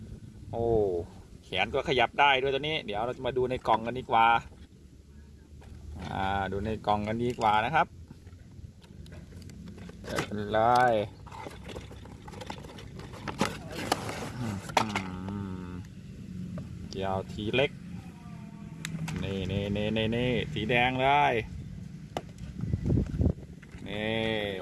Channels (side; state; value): both; identical; correlation 1.00